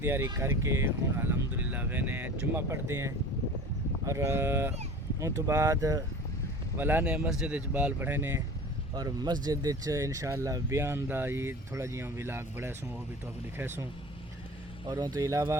تیاری کر کے ہوں الحمدللہ وینے جمعہ پڑھتے ہیں اور ان تو بعد والا نے مسجد بال پڑھے نے اور مسجد انشاءاللہ بیان دا یہ تھوڑا جیاں ولاگ بڑھے سوں وہ بھی تو لکھے سوں. اور ان تو علاوہ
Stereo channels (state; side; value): normal; both; correlation 0.39